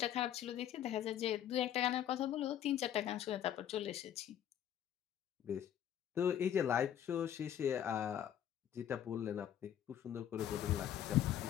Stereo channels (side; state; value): right; quieter; 10.3 dB